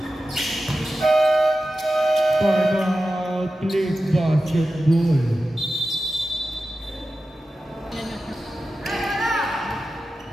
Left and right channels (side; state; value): both; normal; correlation 0.93